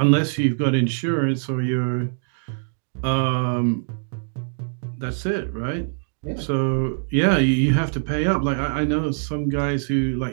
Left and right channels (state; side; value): silent; left; digital silence